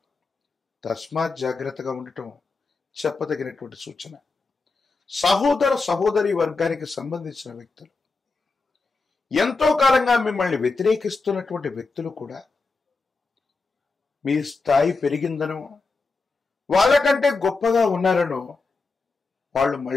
తస్మాత్ జాగ్రత్తగా ఉండటం చెప్పదగినటువంటి సూచన. సహోదర సహోదరి వర్గానికి సంబంధించిన వ్యక్తులు, ఎంతో కాలంగా మిమ్మల్ని వ్యతిరేకిస్తున్నటువంటి వ్యక్తులు కూడా మీ స్థాయి పెరిగిందనో, వాళ్ళకంటే గొప్పగా ఉన్నారనో వాళ్ళు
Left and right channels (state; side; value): quieter; right; 4.0 dB